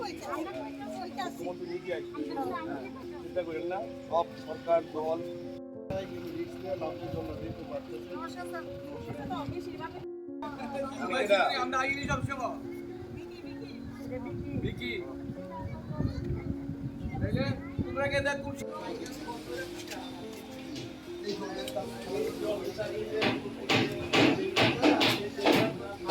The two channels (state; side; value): identical; both; correlation 1.00